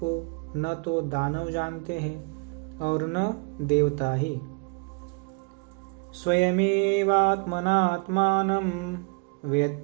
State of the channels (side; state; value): left; quieter; 33.2 dB